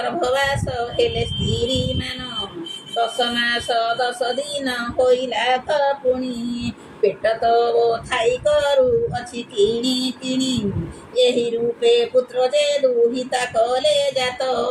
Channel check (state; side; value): identical; both; correlation 1.00